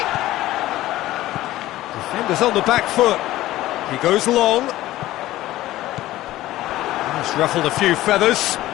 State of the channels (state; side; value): quieter; right; 15.8 dB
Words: Defender's on the back foot. He goes long. He's ruffled a few feathers,